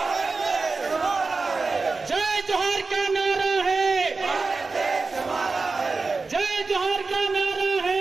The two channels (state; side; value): quieter; left; 4.0 dB